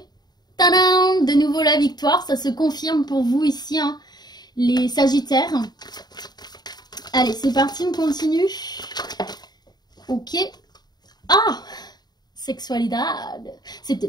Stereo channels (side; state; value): right; late; 0.20 ms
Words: Tadam! De nouveau la victoire, ça se confirme pour vous ici, hein, les Sagittaires. Allez, c'est parti, on continue. Ok. Ah! Sexualité, c'est